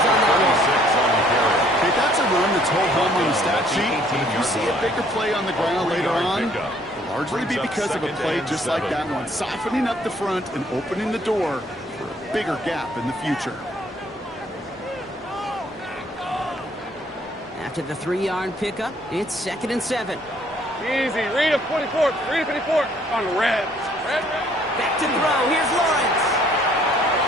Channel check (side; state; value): both; normal; correlation 0.61